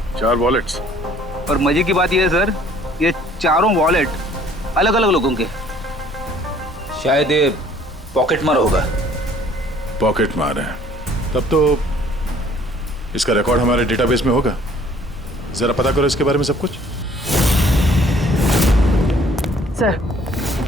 4 वॉलेट्स? और मजे की बात ये है सर, ये चारों वॉलेट अलग अलग लोगों के। शायद ये पॉकेट मार होगा। पॉकेट मार है? तब तो इसका रिकॉर्ड हमारे डेटाबेस में होगा। जरा पता करो इसके बारे में सब कुछ।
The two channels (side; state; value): both; normal; correlation 0.57